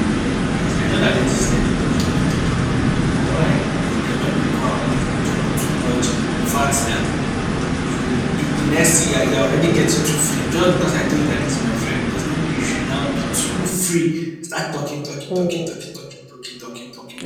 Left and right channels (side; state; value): both; identical; correlation 1.00